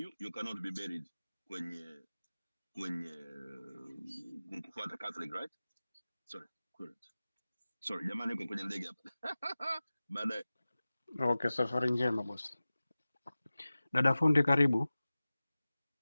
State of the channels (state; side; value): inverted; both; correlation -0.97